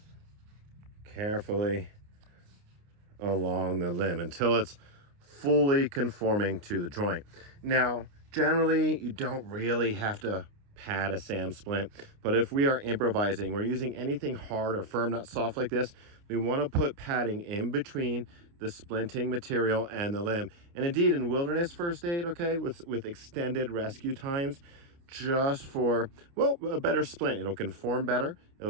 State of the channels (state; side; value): late; left; 29 ms